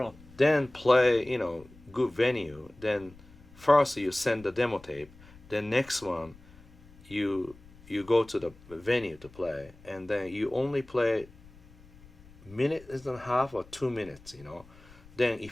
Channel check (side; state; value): left; noise; rumble, 23 dB below the sound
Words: Then play, you know, good venue. Then first you send the demo tape. Then next one, you go to the venue to play, and then you only play minute and a half or 2 minutes, you know. Then